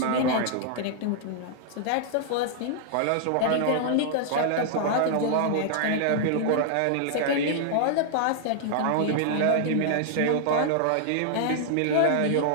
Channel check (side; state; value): both; different; correlation -0.01